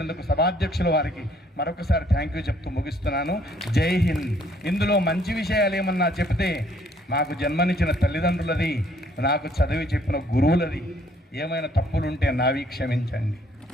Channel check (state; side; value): normal; both; correlation 0.64